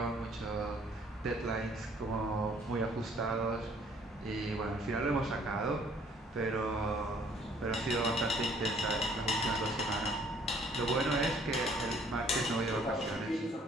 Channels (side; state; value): both; normal; correlation 0.60